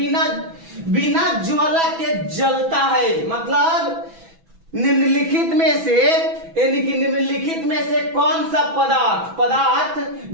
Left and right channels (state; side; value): late; left; 6.1 ms